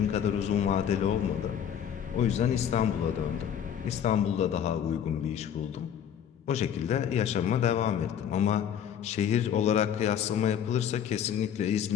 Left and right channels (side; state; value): right; quieter; 9.0 dB